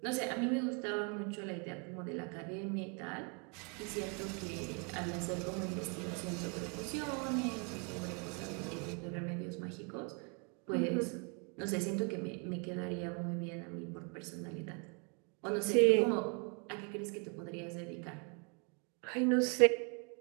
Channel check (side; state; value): left; quieter; 36.7 dB